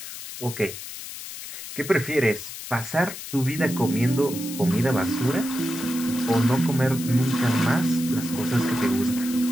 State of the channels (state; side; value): noise; left; hiss, 10 dB below the sound